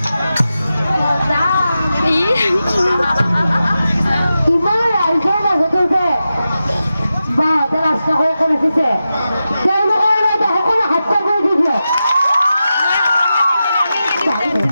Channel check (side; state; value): both; inverted; correlation -0.91